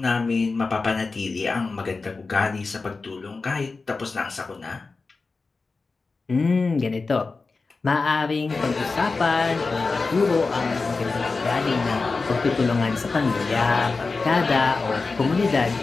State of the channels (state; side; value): quieter; right; 4.0 dB